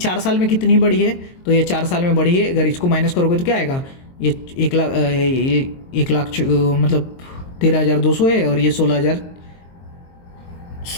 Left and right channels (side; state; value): right; late; 22 ms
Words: साल में कितनी बढ़ी है, तो ये 4 साल में बढ़ी है। अगर इसको माइनस करोगे तो क्या आएगा, ये 1 लाख मतलब 13,200 है, और ये